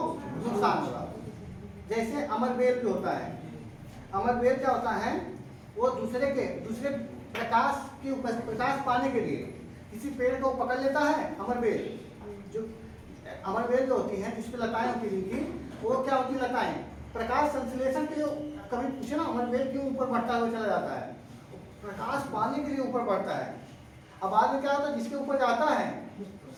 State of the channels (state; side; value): identical; both; correlation 1.00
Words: नुकसान होगा। जैसे अमरबेल भी होता है, अमरबेल क्या होता है, वो दूसरे प्रकाश पाने के लिए किसी पेड़ को पकड़ लेता है। अमरबेल जो होती है जिस पे लताएं होती हैं, वो क्या होती है, लताएं प्रकाश संश्लेषण के लिए, कभी पूछे ना अमरबेल क्यों ऊपर बढ़ता हुआ चला जाता है, प्रकाश पाने के लिए ऊपर बढ़ता है। अब बाद में क्या होता है, जिसके ऊपर जाता है